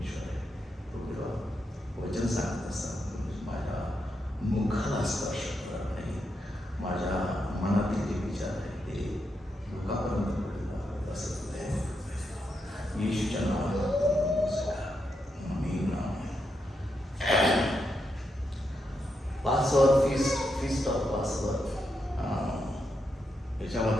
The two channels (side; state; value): both; normal; correlation 0.83